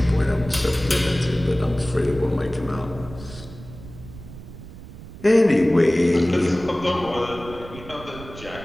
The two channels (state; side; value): noise; right; rumble, 15 dB below the sound